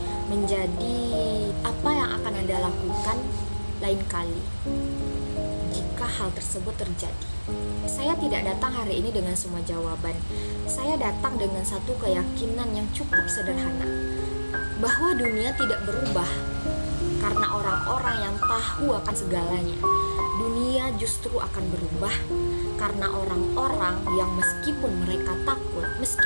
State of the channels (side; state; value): both; inverted; correlation -1.00